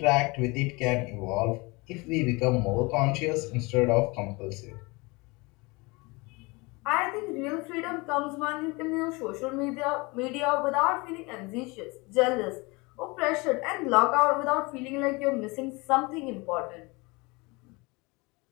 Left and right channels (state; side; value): quieter; right; 25.8 dB